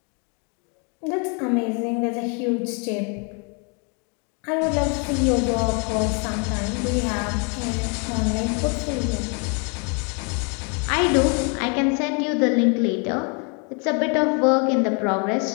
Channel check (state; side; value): quieter; right; 36.2 dB